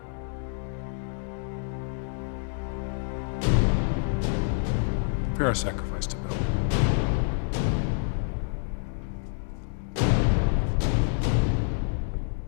Prepare a sacrifice to Bel.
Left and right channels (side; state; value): right; silent; digital silence